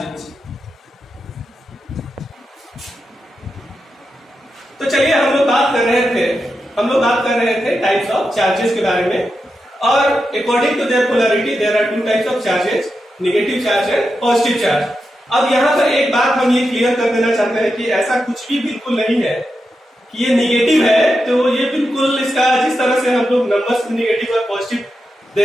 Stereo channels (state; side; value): normal; both; correlation 0.88